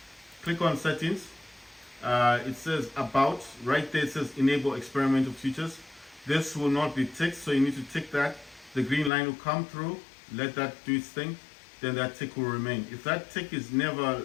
Click on settings. It says about. Right there it says enable experimental features. This will not be ticked, so you need to tick that. The green line will come through. Let that do its thing. Then that tick will remain. If that tick is never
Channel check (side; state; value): right; drops out; at 9.1 s